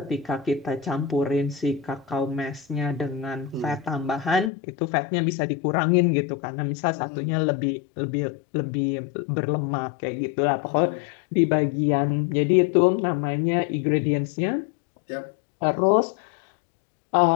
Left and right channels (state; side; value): drops out; right; at 4.5 s